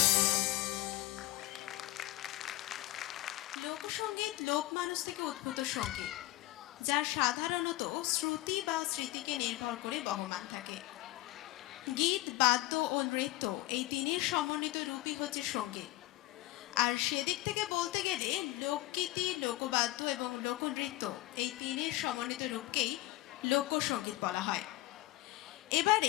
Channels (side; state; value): right; quieter; 18.0 dB